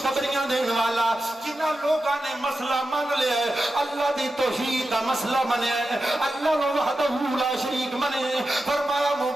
دینے والا، جنہاں لوگاں نے مسئلہ مان لیا ہے، اللہ دی توحید دا مسئلہ منے ہے، اللہ وحدہ لا شریک منے، فرمایا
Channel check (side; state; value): both; normal; correlation 0.91